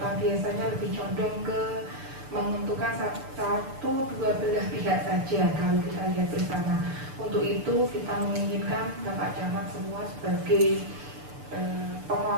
biasanya lebih condong ke menentukan satu dua belah pihak saja kalau kita lihat bersama. Untuk itu kita menginginkan Bapak Camat semua sebagai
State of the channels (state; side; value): late; left; 6.9 ms